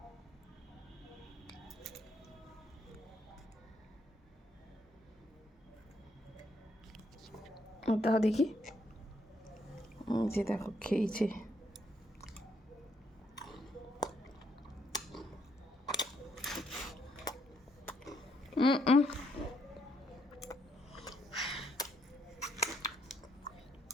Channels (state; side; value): normal; both; correlation 0.73